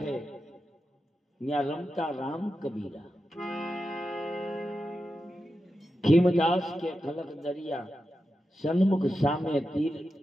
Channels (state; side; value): normal; both; correlation 0.90